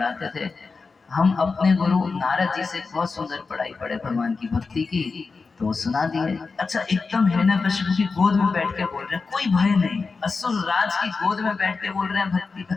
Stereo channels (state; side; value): quieter; right; 4.4 dB